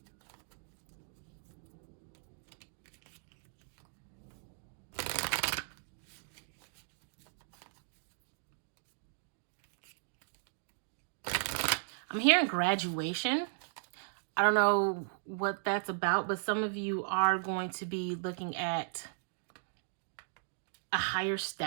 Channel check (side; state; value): left; silent; digital silence